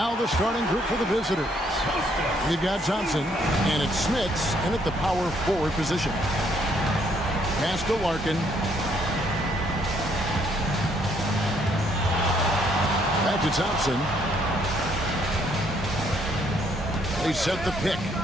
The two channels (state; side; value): normal; both; correlation 0.68